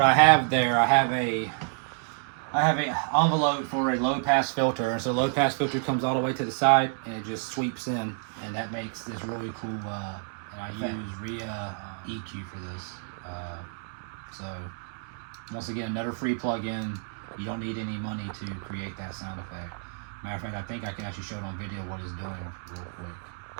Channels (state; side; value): silent; left; 59 dB below the other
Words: I have there, I have a envelope for a low pass filter, and so the low pass filter comes all the way to the side and it just sweeps in, and that makes this really cool. And I use RIA EQ for this. So once again, another free plugin. You don't need any money to create that sound effect. Matter of fact, I think I can actually show it on video what it's doing real quick.